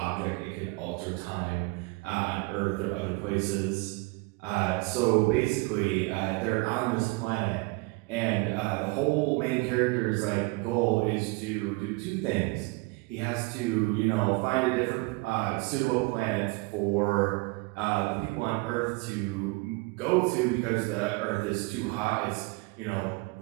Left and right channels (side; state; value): left; quieter; 25.8 dB